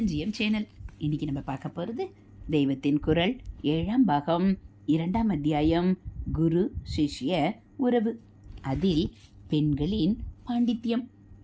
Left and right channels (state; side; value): identical; both; correlation 1.00